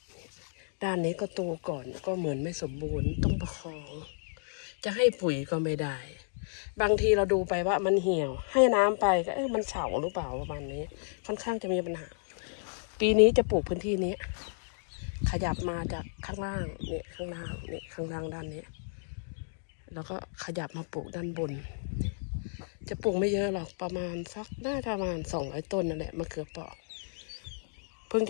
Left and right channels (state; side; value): silent; right; digital silence